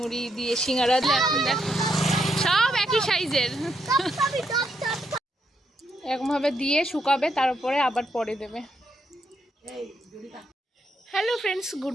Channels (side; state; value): both; normal; correlation 0.78